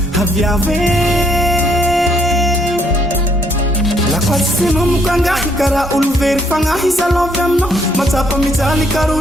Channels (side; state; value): both; normal; correlation 0.69